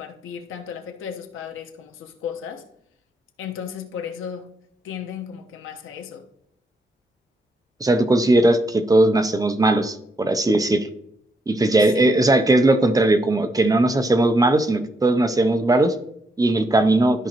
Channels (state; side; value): normal; both; correlation 0.77